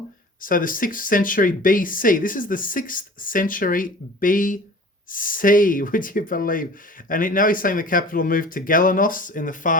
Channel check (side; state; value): both; normal; correlation 0.42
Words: So the 6th century BC. This is the 6th century BC, would you believe? And now he's saying the capital moved to Galenos in the